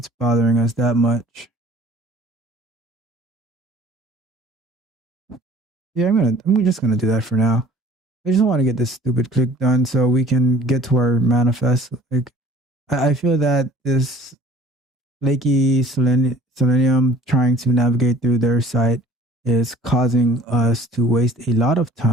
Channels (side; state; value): both; normal; correlation 0.51